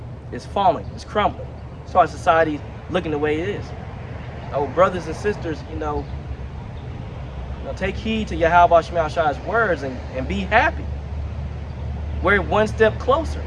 is falling, is crumbling. That's why society's looking the way it is. Oh, brothers and sisters, take heed to Yahweh Shai's words and be happy. We're one step closer.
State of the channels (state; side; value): identical; both; correlation 1.00